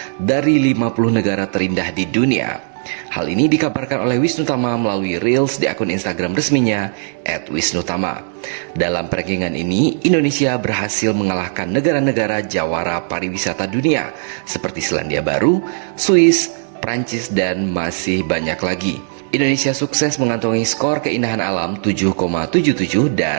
dari 50 negara terindah di dunia. Hal ini dikabarkan oleh Wisnutama melalui Reels di akun Instagram resminya @wisnutama. Dalam rankingan ini, Indonesia berhasil mengalahkan negara-negara jawara pariwisata dunia seperti Selandia Baru, Swiss, Prancis, dan masih banyak lagi. Indonesia sukses mengantongi skor keindahan alam 7,77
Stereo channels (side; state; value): left; silent; digital silence